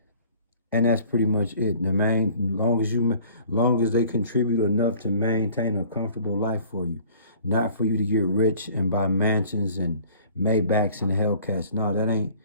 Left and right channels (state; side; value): inverted; both; correlation -0.51